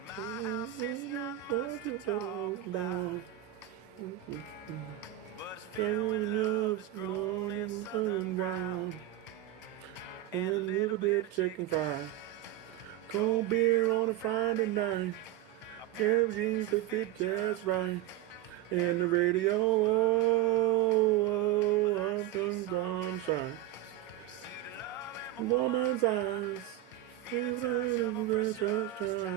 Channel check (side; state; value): left; quieter; 13.5 dB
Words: my house is not much to talk about, but it's filled with love that's grown in southern ground, and a little bit of chicken fried, cold beer on a Friday night, a pair of jeans that fit just right, and the radio. Well, I see sunrise, see the love in my woman's eyes, feel the touch of a precious